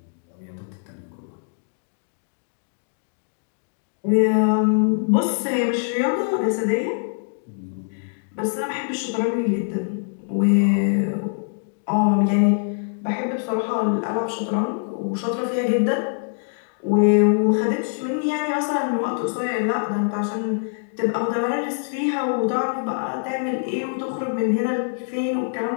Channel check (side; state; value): right; silent; digital silence